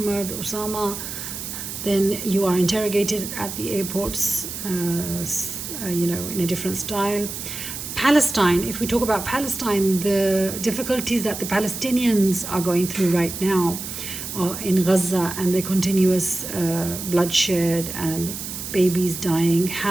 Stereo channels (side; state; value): right; noise; hiss, 7 dB below the sound